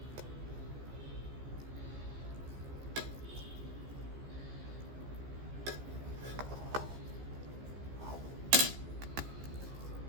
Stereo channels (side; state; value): left; late; 15 ms